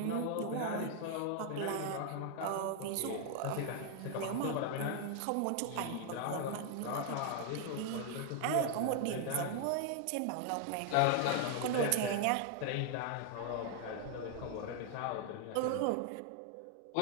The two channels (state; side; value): different; both; correlation 0.00